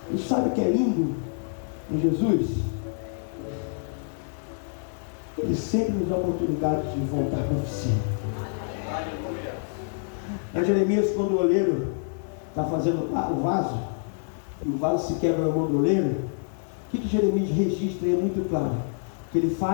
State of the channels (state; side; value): silent; right; digital silence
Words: E sabe o que é lindo em Jesus? Ele sempre nos dá a oportunidade de voltar para a oficina. Em Jeremias, quando o oleiro está fazendo o vaso, e o vaso se quebra na mão do oleiro, o que Jeremias registra? É muito claro, que ele